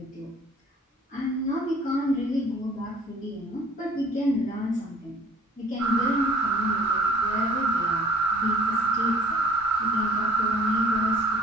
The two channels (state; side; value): normal; both; correlation 0.52